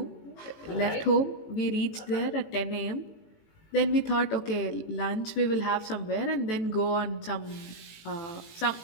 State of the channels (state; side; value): late; right; 18 ms